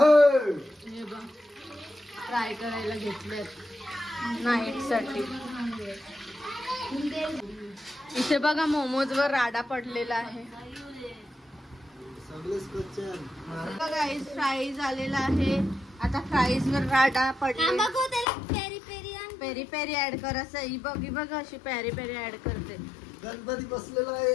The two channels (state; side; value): drops out; right; at 18.2 s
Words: बघ फ्राय करायला घेतलेत नाईट साठी. इथे बघा मोमोज वर राडा पडलेला आहे. गाईस फ्राईज आलेला आहे. आता फ्राईज वर राडा पडला. पेरी पेरी ऍड कर असं. ही बघ अशी पेरी पेरी ऍड करते. गणपती बसलेला आहे.